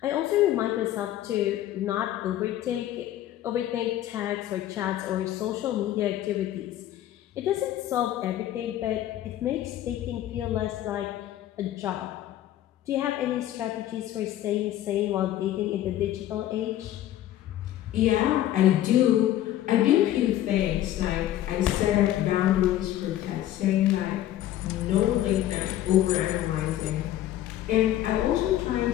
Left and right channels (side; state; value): right; quieter; 13.0 dB